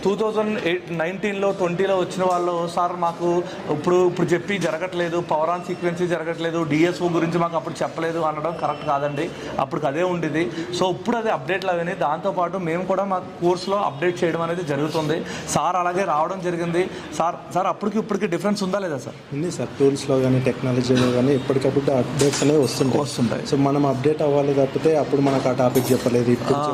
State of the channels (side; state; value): both; identical; correlation 1.00